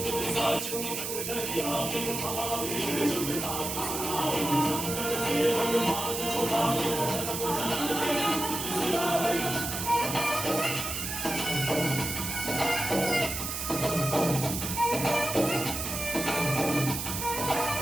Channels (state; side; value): noise; right; hiss, 4 dB below the sound